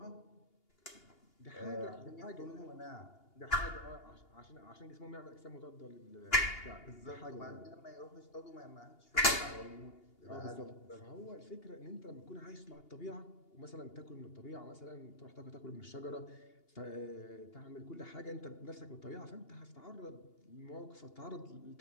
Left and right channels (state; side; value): late; right; 2.8 ms